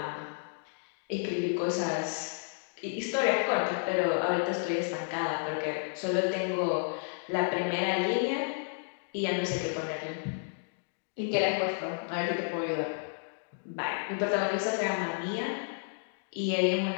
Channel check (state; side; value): silent; right; digital silence